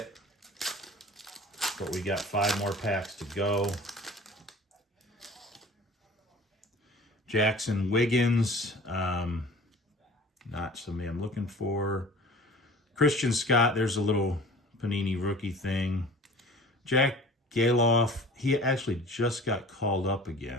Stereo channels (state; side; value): normal; both; correlation 0.43